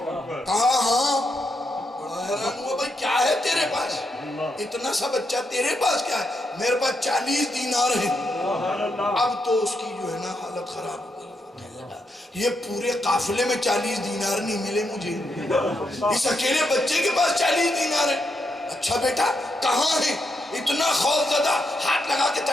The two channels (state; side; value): normal; both; correlation 0.81